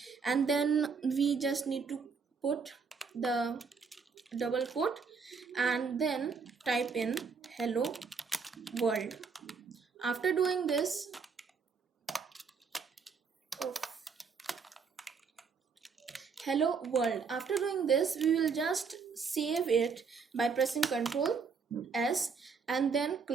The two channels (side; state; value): left; quieter; 5.4 dB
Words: And then we just need to put the double quote and then type in hello world. After doing this, hello world, after doing this, we will just save it by pressing Ctrl S and then